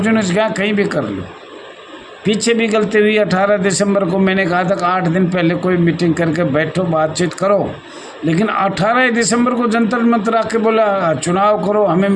जगह कहीं भी कर लो। पीछे भी गलती हुई, 18 दिसंबर को मैंने कहा था कि 8 दिन पहले कोई मीटिंग करके बैठो, बातचीत करो, लेकिन 18 दिसंबर को जंतर मंतर आके बोला चुनाव करो, हमें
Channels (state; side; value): identical; both; correlation 1.00